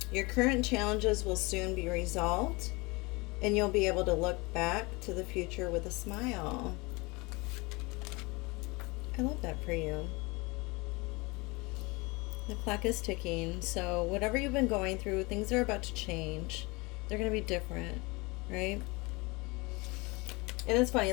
Your current challenges will soon be resolved, and you'll be able to look back to the future with a smile. I love that for you. The clock is ticking, so whatever you've been going through, things are about to change. They're going to be different, right? And it's funny,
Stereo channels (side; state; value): right; quieter; 25.7 dB